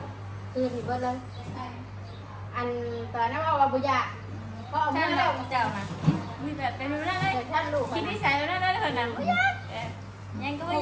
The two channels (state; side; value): identical; both; correlation 1.00